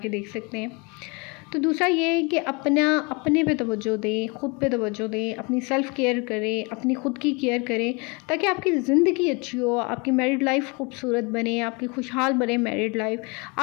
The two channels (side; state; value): right; quieter; 29.7 dB